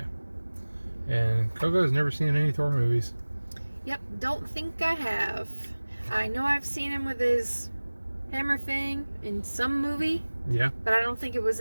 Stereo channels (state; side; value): inverted; both; correlation -1.00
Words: And Coco has never seen any Thor movies. Yep, don't think I have. I know I've seen him with his hammer thing in some movie. Yeah. But I don't think it was